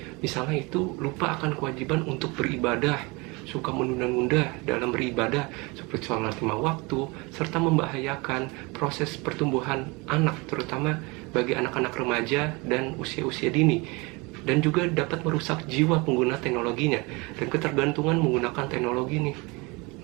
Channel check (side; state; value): left; quieter; 26.6 dB